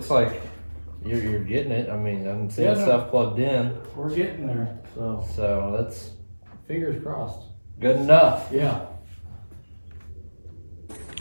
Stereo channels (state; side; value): inverted; both; correlation -1.00